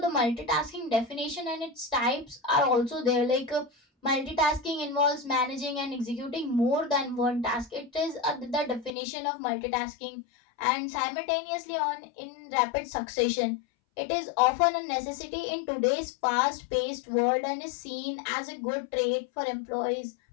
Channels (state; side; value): drops out; right; at 8.9 s